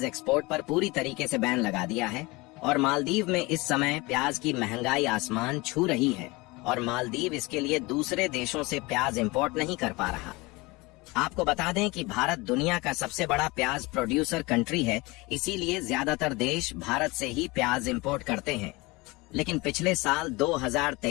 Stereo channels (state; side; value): quieter; right; 23.7 dB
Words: एक्सपोर्ट पर पूरी तरीके से बैन लगा दिया है। और मालदीव में इस समय प्याज की महंगाई आसमान छू रही है और मालदीव इसके लिए दूसरे देशों से प्याज इंपोर्ट नहीं कर पा रहा। आपको बता दें कि भारत दुनिया का सबसे बड़ा प्याज प्रोड्यूसर कंट्री है, इसीलिए ज्यादातर देश भारत से ही प्याज इंपोर्ट करते हैं। लेकिन पिछले साल